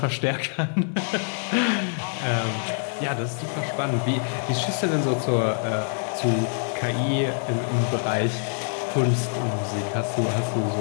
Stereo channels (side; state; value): right; silent; 59 dB below the other